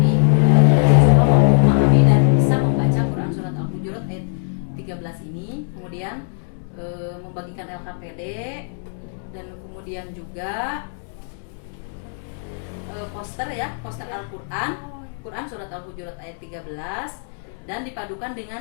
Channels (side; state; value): right; silent; digital silence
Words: dan bisa membaca Quran Surat Al-Hujurat ayat 13 ini. Kemudian membagikan LKPD dan kemudian juga poster Al-Quran Surat Al-Hujurat ayat 13 dan dipadukan